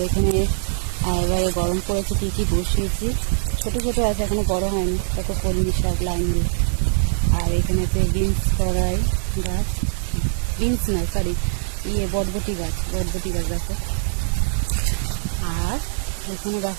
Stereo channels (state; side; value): silent; left; digital silence